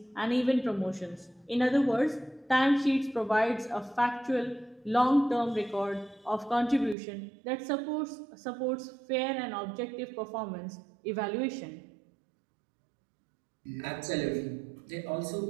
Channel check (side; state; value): left; drops out; at 7.0 s